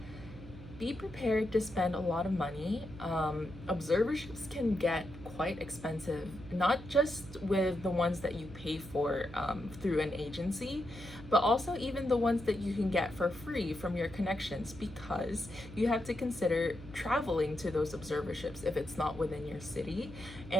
Be prepared to spend a lot of money. Observerships can get quite expensive, not just with the ones that you pay for through an agency, but also even the ones that you can get for free from your connections, because you have to consider traveling to those observerships if it's not within your city,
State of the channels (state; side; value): noise; right; hum, 15 dB below the sound